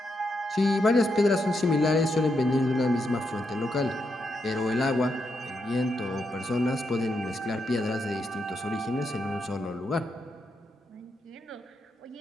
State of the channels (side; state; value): both; normal; correlation 0.82